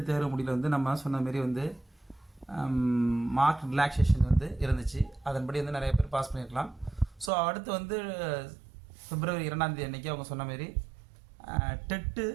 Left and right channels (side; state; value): left; drops out; at 7.3 s